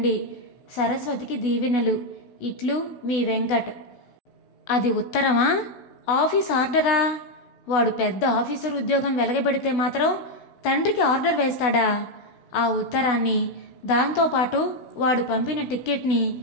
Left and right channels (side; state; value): right; late; 16 ms